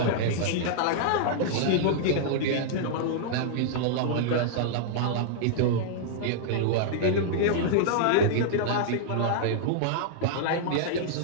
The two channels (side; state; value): both; different; correlation -0.01